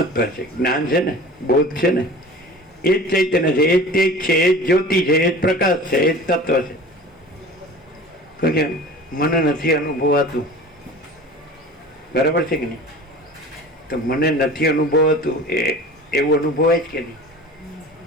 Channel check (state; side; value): normal; both; correlation 0.39